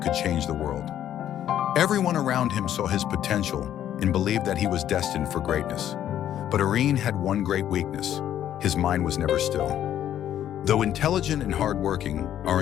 could change the world. Everyone around him saw his potential and believed that he was destined for greatness. But Arin had one great weakness: his mind was never still. Though intelligent and hardworking,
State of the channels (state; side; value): quieter; right; 11.0 dB